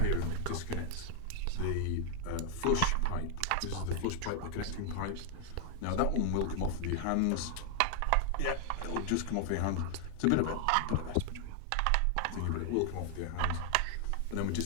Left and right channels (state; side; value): different; both; correlation 0.00